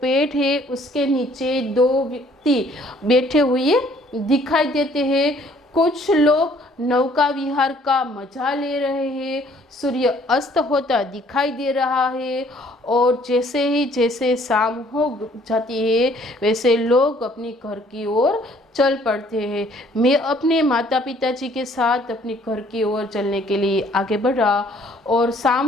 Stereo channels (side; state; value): both; normal; correlation 0.60